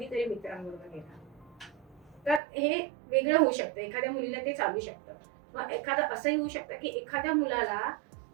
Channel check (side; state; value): left; drops out; at 2.4 s